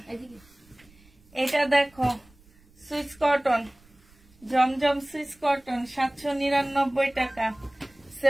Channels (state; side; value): noise; right; rumble, 29 dB below the sound